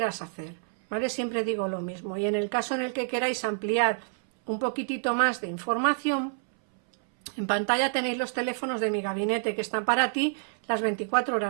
hacer, ¿vale? Siempre digo lo mismo. Y en el caso en el que queráis ampliar un poquitito más de información, en pantalla tenéis los teléfonos de mi gabinete que están para ti las 24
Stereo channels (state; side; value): silent; left; 59 dB below the other